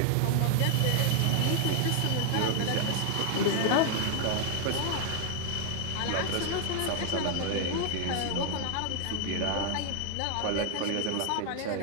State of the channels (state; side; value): different; both; correlation 0.00